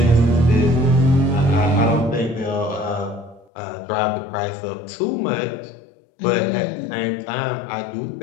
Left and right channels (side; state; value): right; drops out; at 3.5 s